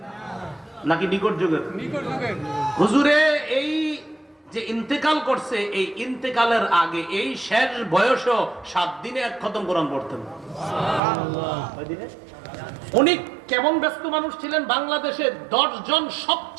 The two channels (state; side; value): drops out; left; at 11.0 s